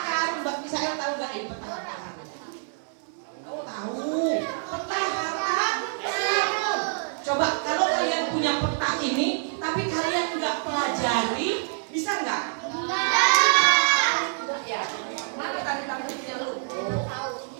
Coba kalau kalian punya peta ini, tapi kalian nggak pelajari, bisa nggak? Enggak ya. Mana tadi kamu punya lu?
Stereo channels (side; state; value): left; silent; 61 dB below the other